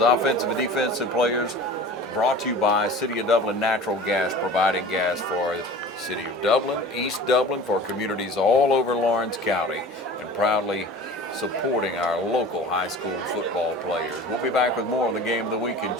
offensive and defensive players brought to you by City of Dublin Natural Gas, providing gas for City of Dublin, East Dublin, for communities all over Lawrence County, and proudly supporting our local high school football players. We'll be back with more on the Game of the Week in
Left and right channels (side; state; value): both; normal; correlation 0.40